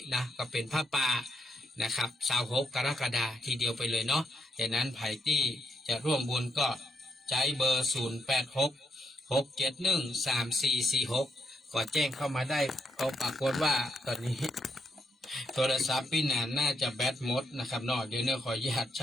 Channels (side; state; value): both; normal; correlation 0.79